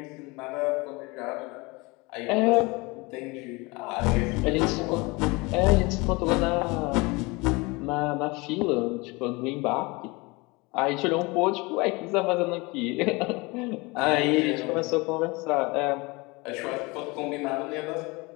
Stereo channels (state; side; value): quieter; right; 25.3 dB